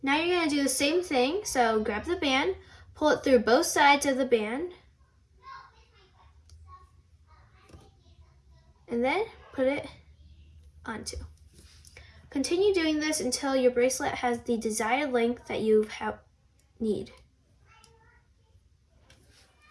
Now you're going to do the same thing, so grab the band, pull it through both sides of the band, and then put it onto. Continue doing this until your bracelet has the desired length that you need.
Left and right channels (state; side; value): identical; both; correlation 1.00